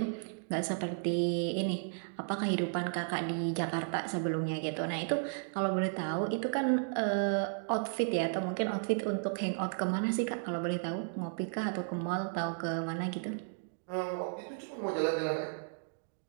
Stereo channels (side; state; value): left; silent; digital silence